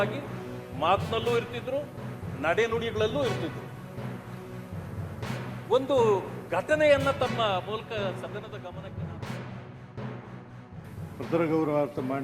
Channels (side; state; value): both; identical; correlation 1.00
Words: ಆಗಿ ಮಾತಿನಲ್ಲೂ ಇರ್ತಿದ್ರು, ನಡೆನುಡಿಗಳಲ್ಲೂ ಇರ್ತಿದ್ರು. ಒಂದು ಘಟನೆಯನ್ನ ತಮ್ಮ ಮೂಲಕ ಸದನದ ಗಮನಕ್ಕೆ ಪತ್ರ ಗೌರವಾರ್ಥ